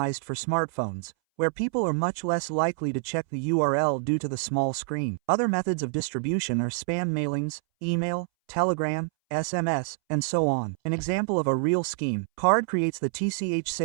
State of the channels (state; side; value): silent; left; 60 dB below the other